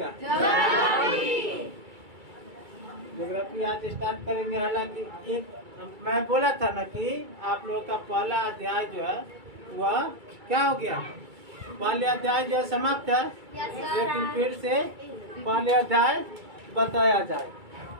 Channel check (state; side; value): late; left; 2.3 ms